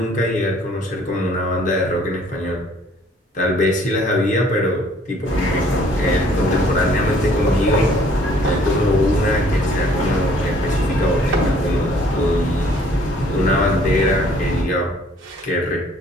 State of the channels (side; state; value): both; normal; correlation 0.59